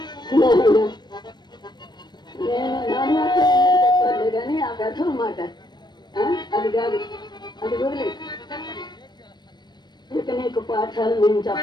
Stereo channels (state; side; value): late; right; 0.21 ms